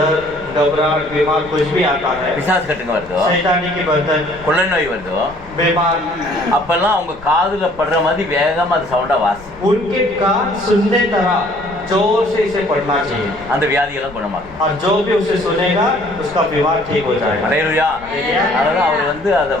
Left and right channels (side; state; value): left; noise; rumble, 20 dB below the sound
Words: घबराहट बीमार कुछ भी आता है, பிசாசு கட்டுங்க வருதோ शैतानी की बंधन கொள்ளை நோய் வருதோ बीमार, அப்பெல்லாம் அவங்க காதுல படுற மாதிரி வேகமா அது சவுண்டா வாசி उनके कान सुनने तरह जोर से इसे पढ़ना चाहिए, அந்த வியாதியெல்லாம் குணமாகும் और जो भी उसे सुनेगा उसका बीमार ठीक हो जाएगा। அடையலையா அதனால அவர் வந்து அதை